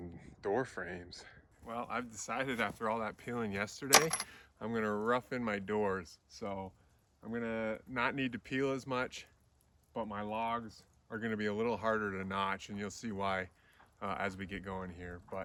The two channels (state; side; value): identical; both; correlation 1.00